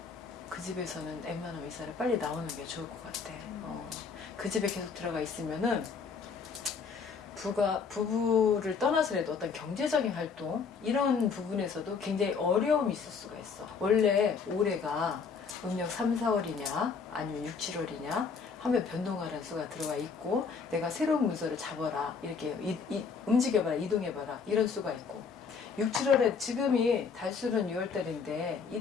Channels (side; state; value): right; quieter; 5.5 dB